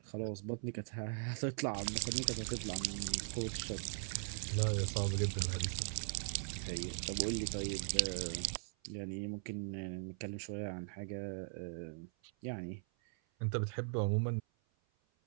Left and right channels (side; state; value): left; silent; 51 dB below the other